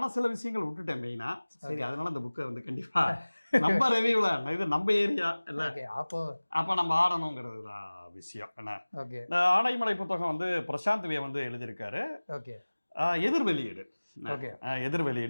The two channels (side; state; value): both; inverted; correlation -1.00